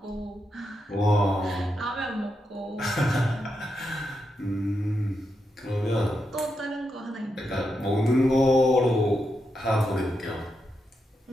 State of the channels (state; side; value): normal; both; correlation 0.84